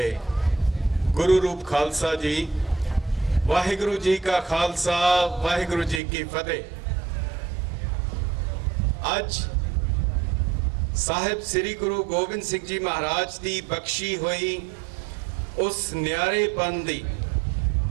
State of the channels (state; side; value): drops out; left; at 6.0 s